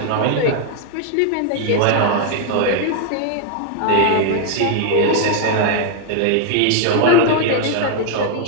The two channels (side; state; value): both; different; correlation 0.00